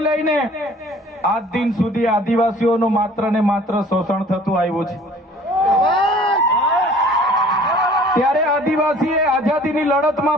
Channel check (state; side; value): normal; both; correlation 0.51